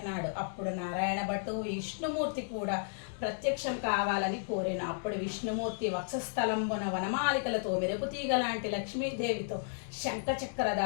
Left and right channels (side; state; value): right; silent; digital silence